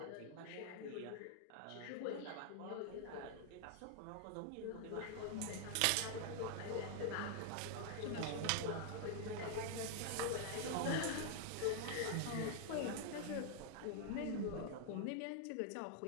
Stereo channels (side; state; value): both; different; correlation 0.00